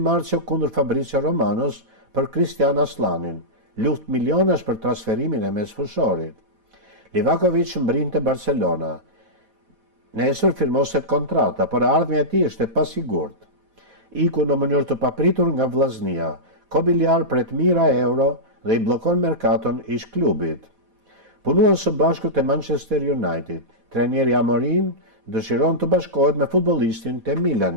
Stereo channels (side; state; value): left; late; 4.1 ms